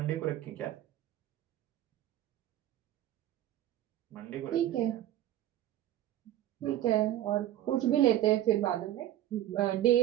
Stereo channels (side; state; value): left; quieter; 13.1 dB